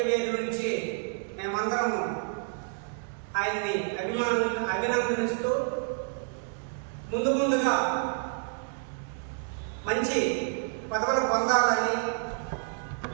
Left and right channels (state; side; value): silent; left; 58 dB below the other